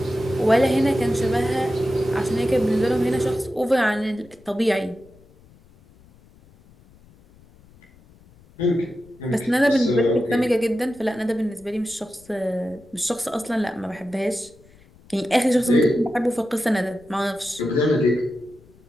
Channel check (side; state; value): left; noise; rumble, 27 dB below the sound